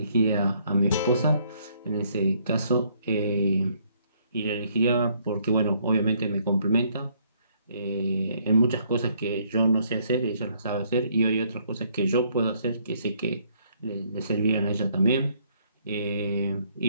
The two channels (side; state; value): both; inverted; correlation -0.67